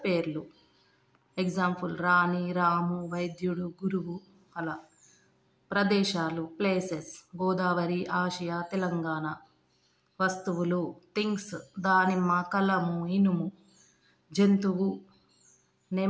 పేర్లు. ఎగ్జాంపుల్ రాణి, రాము, వైద్యుడు, గురువు అలా. ప్రదేశాలు ప్లేసెస్, గోదావరి, ఆసియా, తెలంగాణ. వస్తువులు థింగ్స్, దానిమ్మ, కలము, ఇనుము. జంతువు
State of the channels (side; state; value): both; identical; correlation 1.00